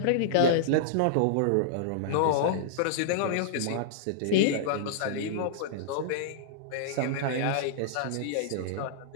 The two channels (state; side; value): different; both; correlation -0.02